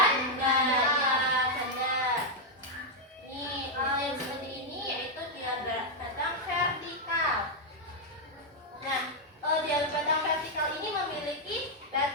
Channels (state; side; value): normal; both; correlation -0.01